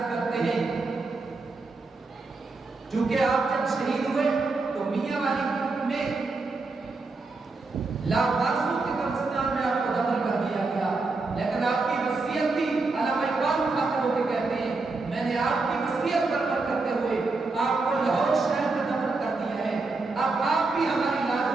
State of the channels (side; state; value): left; quieter; 3.7 dB